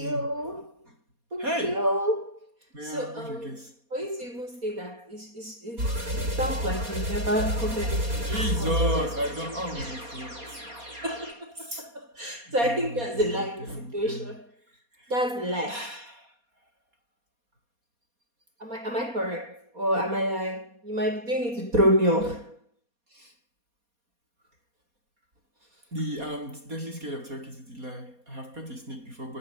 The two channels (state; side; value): late; left; 4.2 ms